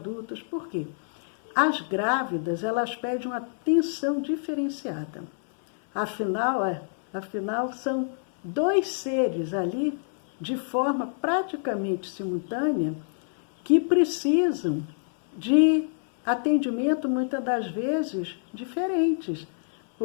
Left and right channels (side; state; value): right; silent; 60 dB below the other